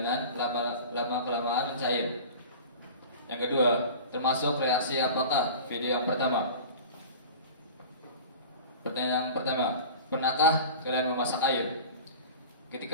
lama kelamaan mencair? Yang kedua, termasuk reaksi apakah video yang pertama? Pertanyaan yang pertama, pernahkah kalian memasak air? Ketika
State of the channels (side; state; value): both; inverted; correlation -0.37